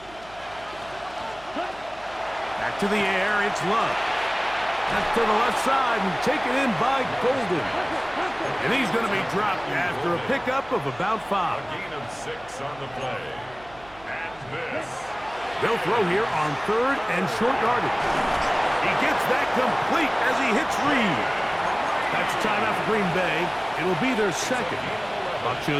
Back to the air, it's Love. That's to the left side and taken in by Golden. And he's going to be dropped after a pickup of about 5. A gain of 6 on the play. And this. They'll throw here on 3rd and short yardage. He gets that complete as he hits Reed. That's a timeout for Green Bay. It'll be their 2nd. Buck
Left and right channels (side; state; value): right; noise; hum, 23 dB below the sound